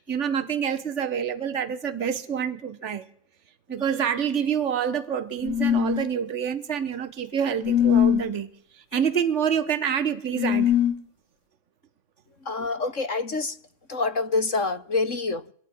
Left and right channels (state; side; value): late; right; 3.7 ms